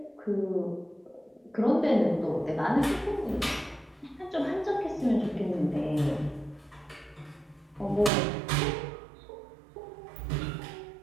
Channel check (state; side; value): drops out; left; at 8.1 s